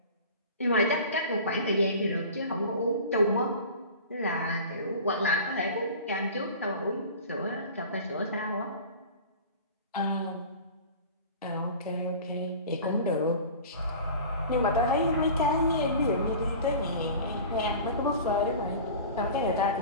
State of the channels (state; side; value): inverted; both; correlation -0.39